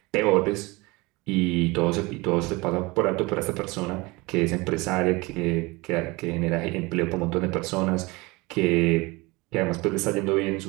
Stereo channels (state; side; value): quieter; left; 24.0 dB